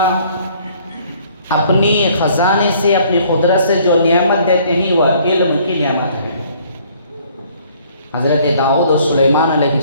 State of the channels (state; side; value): inverted; both; correlation -0.60